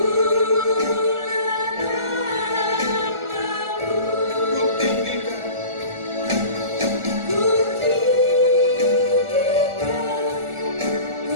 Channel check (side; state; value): left; late; 1.4 ms